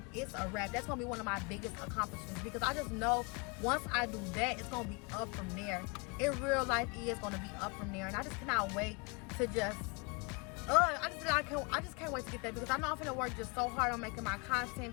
it's a wrap. That's gonna be one of my biggest accomplishments, because I just know once I do that, it's gonna be up from there. In real life, it's gonna be up from there, and I just cannot wait to just. I just can't wait to get that, because I know I'm gonna work just so hard on making my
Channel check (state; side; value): quieter; right; 30.6 dB